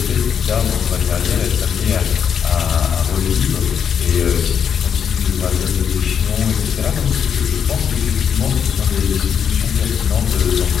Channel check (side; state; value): right; quieter; 7.6 dB